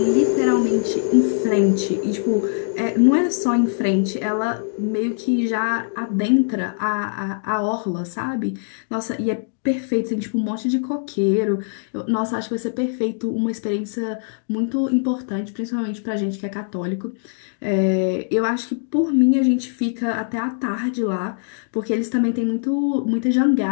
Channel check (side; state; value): right; silent; digital silence